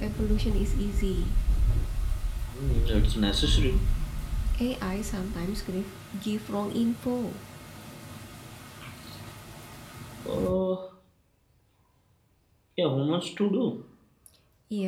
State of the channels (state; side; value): identical; both; correlation 1.00